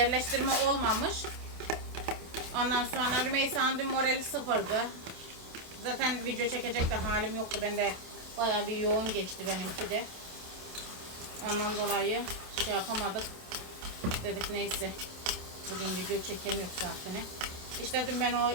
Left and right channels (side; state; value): left; late; 27 ms